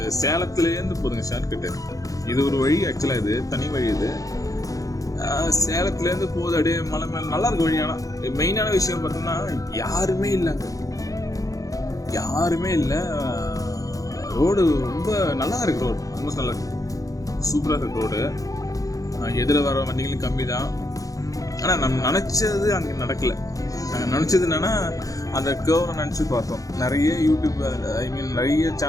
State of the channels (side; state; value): right; late; 0.17 ms